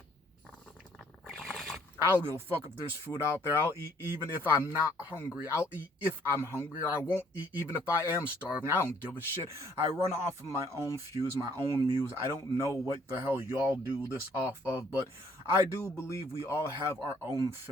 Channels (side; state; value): both; normal; correlation 0.62